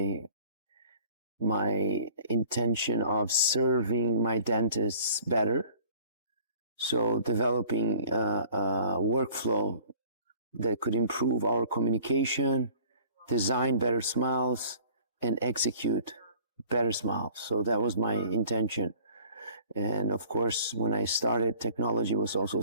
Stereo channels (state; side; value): inverted; both; correlation -0.51